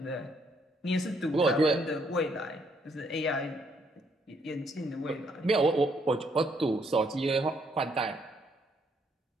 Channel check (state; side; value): normal; both; correlation 0.71